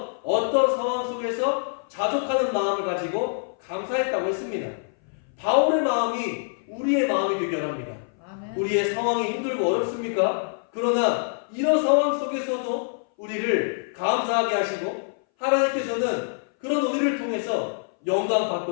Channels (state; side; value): silent; right; 59 dB below the other